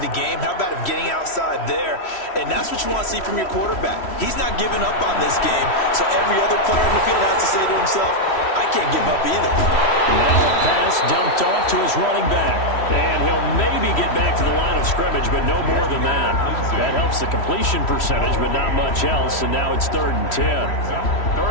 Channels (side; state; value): right; late; 3.1 ms